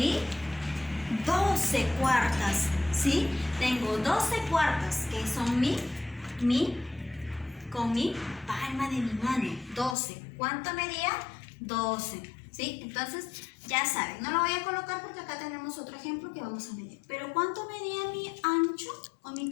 12 cuartas, ¿sí? Tengo 12 cuartas que son con mi palma de mi mano. 12. ¿Cuánto medía? 12, ¿sí? Entonces, ya saben, no lo voy a colocar porque acá tenemos otro ejemplo que vamos a medir. Pero ¿cuánto medía mi ancho o mi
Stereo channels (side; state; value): right; drops out; at 10.0 s